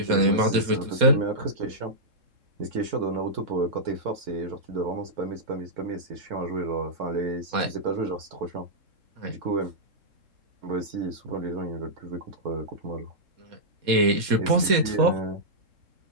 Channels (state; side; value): late; left; 4.2 ms